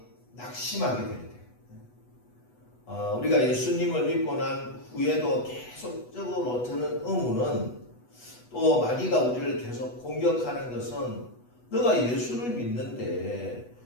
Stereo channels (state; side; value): late; right; 8.1 ms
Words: 낙심하게 될 때. 우리가 예수님을 믿고 난 후에도 계속적으로 드는 의문은, 또 마귀가 우리를 계속 공격하는 것은, 너가 예수를 믿는데